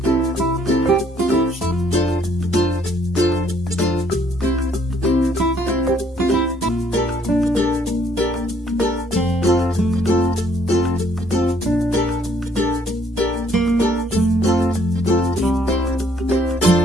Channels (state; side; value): normal; both; correlation 0.65